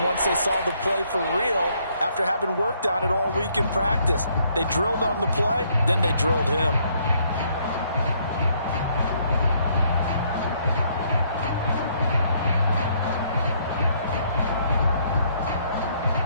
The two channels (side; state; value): both; inverted; correlation -0.68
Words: once they saw the play for real after having worked on it all week in practice. They drilled on the play, then they drilled him.